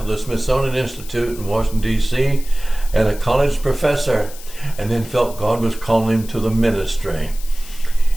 of the Smithsonian Institute in Washington, D.C., and a college professor, and then felt God was calling him to the ministry.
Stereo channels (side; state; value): left; noise; hiss, 17 dB below the sound